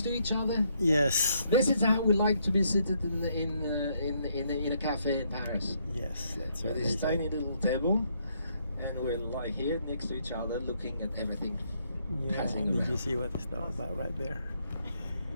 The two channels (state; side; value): inverted; both; correlation -0.73